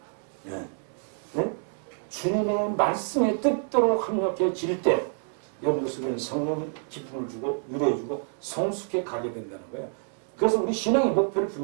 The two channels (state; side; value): silent; left; 60 dB below the other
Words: 네. 네? 주님의 말씀에 뜻대로 합력해질 때 여러분 속에는 성령 기쁨을 주고 위로해주고 성숙해 가게 된다는 거예요. 그래서 우리 신앙의 목표를